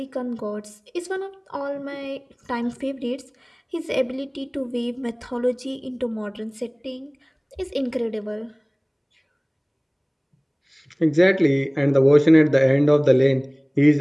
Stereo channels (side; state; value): both; identical; correlation 1.00